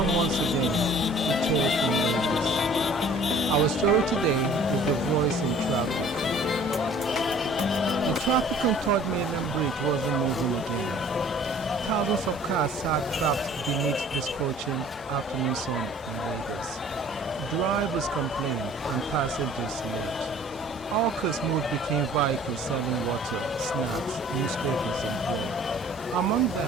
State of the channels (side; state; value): both; normal; correlation 0.51